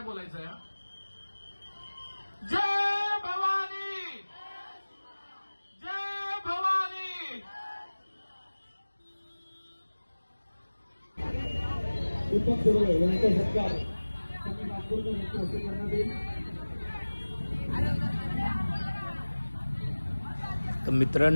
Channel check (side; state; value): both; inverted; correlation -1.00